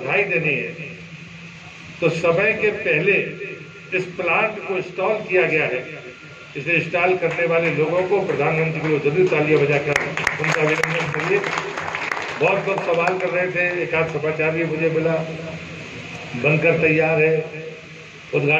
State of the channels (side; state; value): both; identical; correlation 1.00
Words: देनी है तो समय के पहले इस प्लांट को इंस्टॉल किया गया है। इसे इंस्टॉल करने वाले लोगों को, प्रधानमंत्री को जरूर तालियां बजाकर उनका अभिनंदन करिए। बहुत लोग सवाल कर रहे थे, एक आध समाचार भी मुझे मिला, बनकर तैयार है,